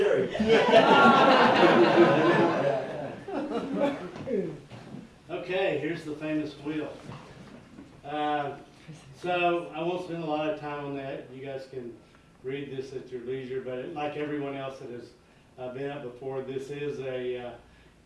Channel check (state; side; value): identical; both; correlation 1.00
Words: Okay, here's the famous wheel. So I won't spend a lot of time on that. You guys can read this at your leisure, but like everyone else that has been up before, this is a